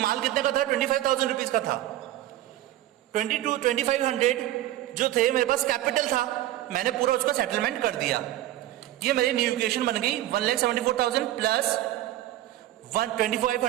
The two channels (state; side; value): quieter; left; 14.5 dB